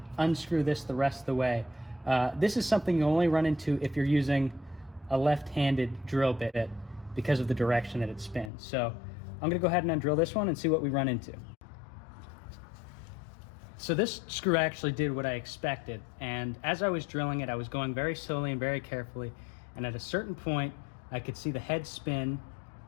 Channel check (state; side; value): drops out; right; at 8.5 s